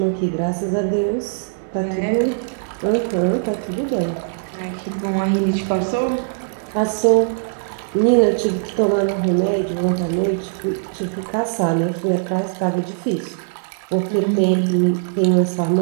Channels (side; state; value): left; silent; digital silence